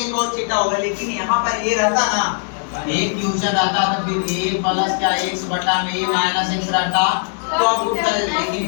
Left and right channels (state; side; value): silent; right; digital silence